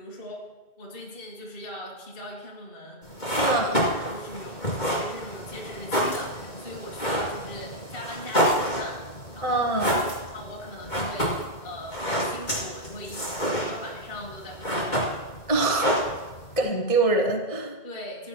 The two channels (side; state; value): right; late; 2.2 ms